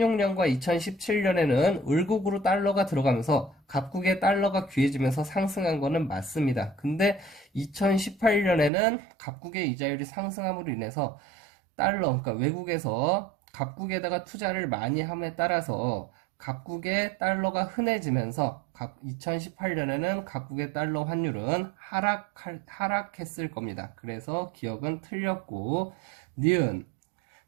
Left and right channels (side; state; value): left; drops out; at 8.7 s